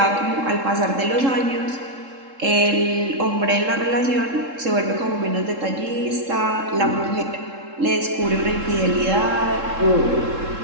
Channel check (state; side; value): late; left; 3.7 ms